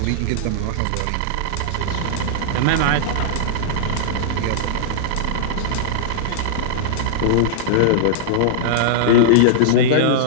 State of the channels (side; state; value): both; different; correlation -0.02